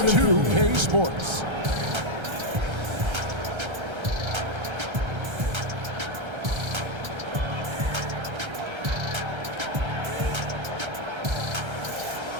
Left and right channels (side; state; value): left; late; 1.3 ms